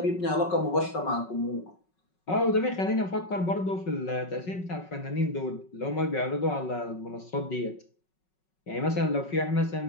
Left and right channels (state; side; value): late; right; 5.4 ms